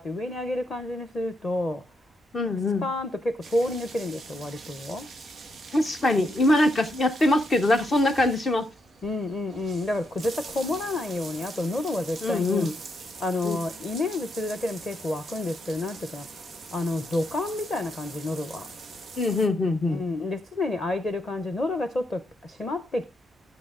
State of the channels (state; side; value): normal; both; correlation 0.79